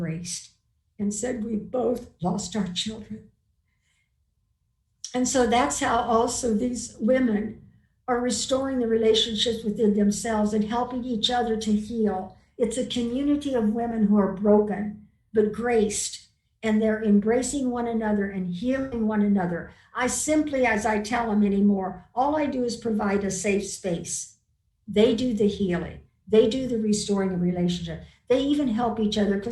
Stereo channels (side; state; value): both; identical; correlation 1.00